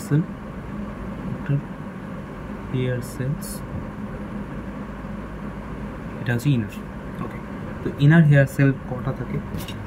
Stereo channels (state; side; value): identical; both; correlation 1.00